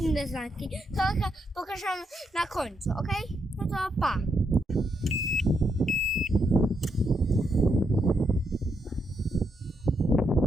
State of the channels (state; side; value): normal; both; correlation 0.79